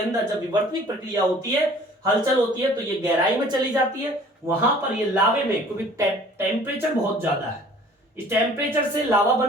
जब विवर्तनिक प्रक्रिया होती है, हलचल होती है, तो ये गहराई में चली जाती है। वहां पर ये लावे में, क्योंकि टेम्परेचर बहुत ज्यादा है, इस टेम्परेचर से लावा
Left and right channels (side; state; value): both; normal; correlation 0.51